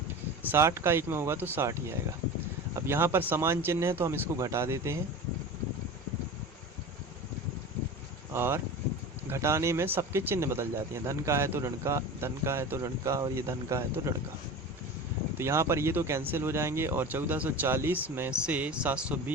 60 का 1 में होगा तो 60 ही आएगा। अब यहाँ पर समान चिन्ह है तो हम इसको घटा देते हैं, और घटाने में सबके चिन्ह बदल जाते हैं। धन का है तो ऋण का, धन का है तो ऋण का, और ये धन का है तो ऋण का। तो यहाँ पर ये तो कैंसिल हो जाएंगे, और 1440 में से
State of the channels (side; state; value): both; normal; correlation 0.32